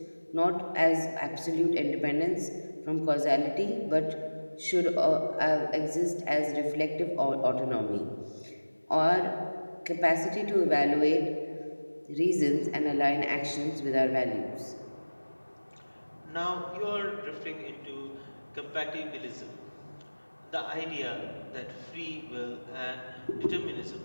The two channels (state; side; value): inverted; both; correlation -1.00